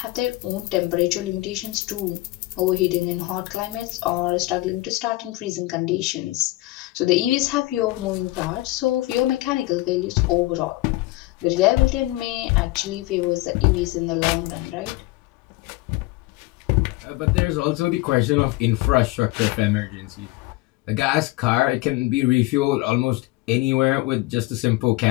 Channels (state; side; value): quieter; right; 19.6 dB